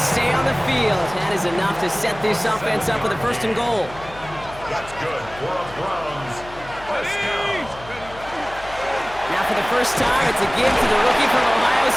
on the field. That is enough to set this offense up with a 1st and goal. That's good for a Browns first down. Now for the first time, it's a give to the rookie from Ohio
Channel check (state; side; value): noise; left; hum, 18 dB below the sound